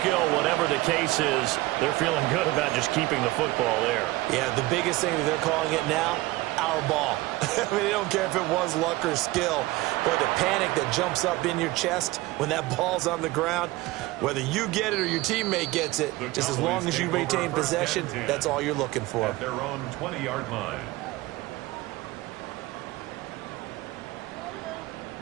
whatever the case is, they're feeling good about just keeping the football there. Yeah, the biggest thing that they're calling it now, our ball. I mean, they don't care if it was luck or skill. But the panic that jumps up in your chest when that ball's on the ground, whether you get it or your teammate gets it, just as long as you retain possession, that's all you're looking for. At their own 20-yard line.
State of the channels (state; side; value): quieter; left; 19.5 dB